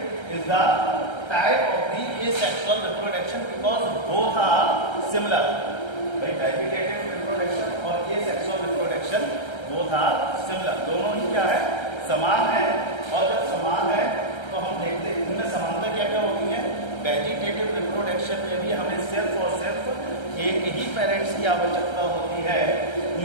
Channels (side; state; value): right; late; 1.3 ms